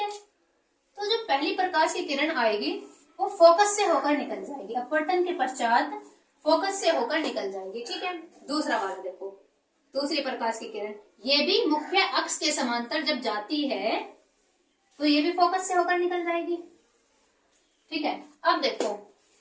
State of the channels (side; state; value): both; identical; correlation 1.00